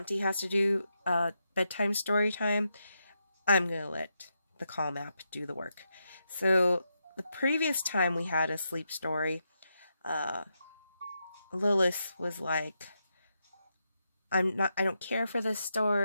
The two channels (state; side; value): inverted; both; correlation -0.84